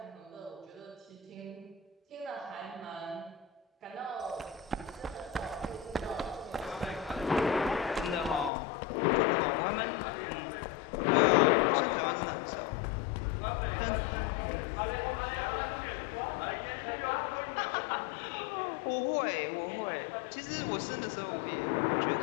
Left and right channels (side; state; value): right; drops out; at 8.5 s